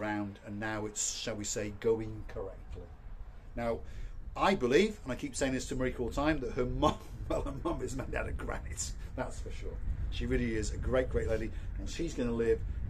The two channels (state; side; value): identical; both; correlation 1.00